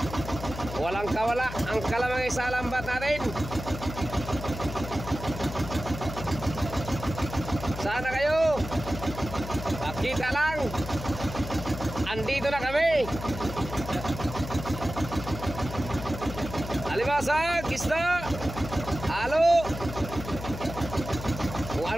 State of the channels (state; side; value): noise; left; hum, 9 dB below the sound